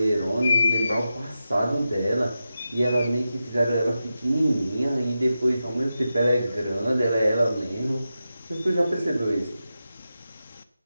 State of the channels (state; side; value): inverted; both; correlation -0.91